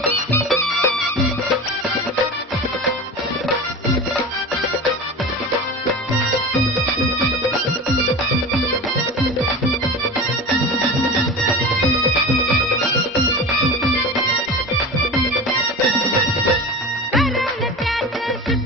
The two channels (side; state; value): both; normal; correlation 0.30